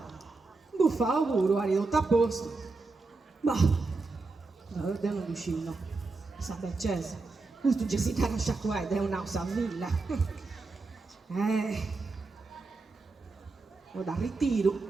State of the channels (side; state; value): left; quieter; 3.7 dB